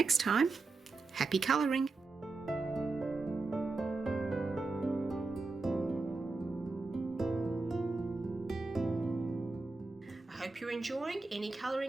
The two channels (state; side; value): quieter; left; 3.6 dB